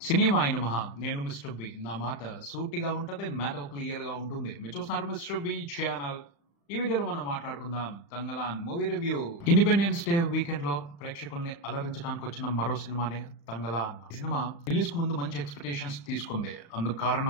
సినిమాయి నమః. నేను Mr B. నా మాట సూటిగా ఉంటది. మ్యాటర్ క్లియర్‌గా ఉంటుంది. మీరు చూస్తున్నారు మిస్టర్ బి ఛానల్. ఈ వీడియోలో మనం మాట్లాడుకుందాం Thangalaan movie review. Independence day weekend లో ప్రేక్షకుల్ని అలరించడానికి వచ్చిన మరో సినిమానే తంగలాన్. ఈ సినిమా రిలీజ్ కు ముందు మంచి ఎక్స్పెక్టేషన్స్ తీసుకుంది. అందుకు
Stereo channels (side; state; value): right; late; 35 ms